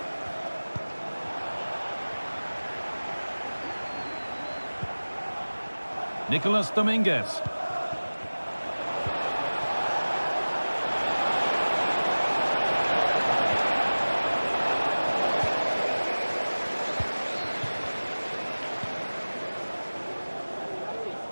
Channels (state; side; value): inverted; both; correlation -1.00